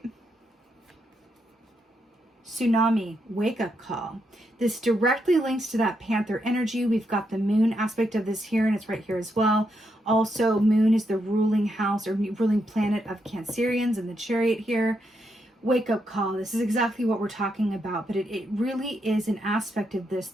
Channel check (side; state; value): both; normal; correlation 0.81